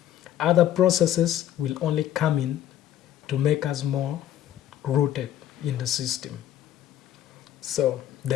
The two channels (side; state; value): right; quieter; 11.8 dB